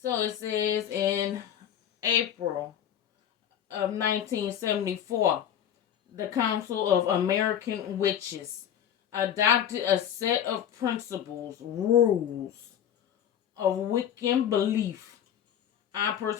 So it says in April of 1974, the Council of American Witches adopted a set of principles, rules of Wiccan belief. I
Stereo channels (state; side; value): quieter; right; 9.7 dB